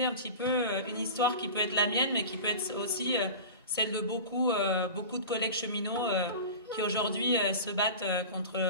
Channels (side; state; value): both; inverted; correlation -0.32